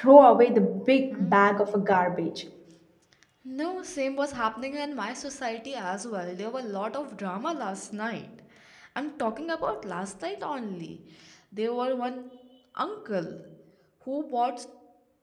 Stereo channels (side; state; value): both; identical; correlation 1.00